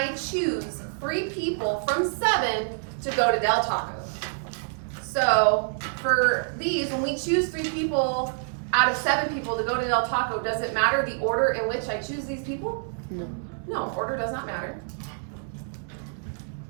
choose 3 people from 7 to go to Del Taco? So for these, when we choose 3 people out of 7 people to go to Del Taco, does it matter the order in which I choose these people? No, order does not matter.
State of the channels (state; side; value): silent; left; digital silence